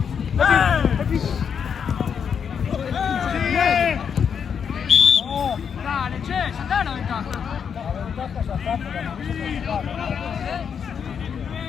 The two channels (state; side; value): quieter; right; 7.1 dB